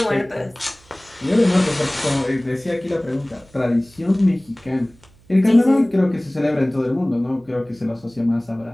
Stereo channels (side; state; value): right; noise; hum, 28 dB below the sound